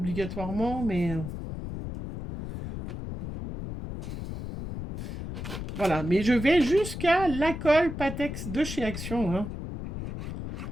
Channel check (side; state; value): left; noise; rumble, 7 dB below the sound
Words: mais... Voilà, mais je vais jusqu'à la colle Patex de chez Action, hein.